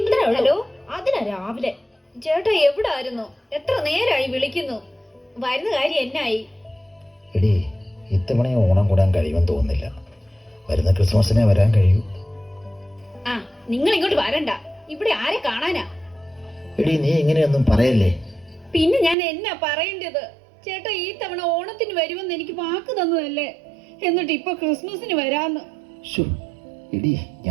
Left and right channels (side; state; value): left; drops out; at 19.2 s